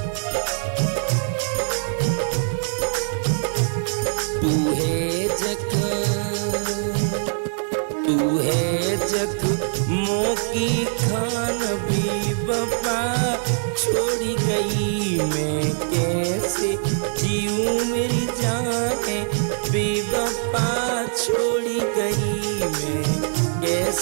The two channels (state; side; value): silent; left; digital silence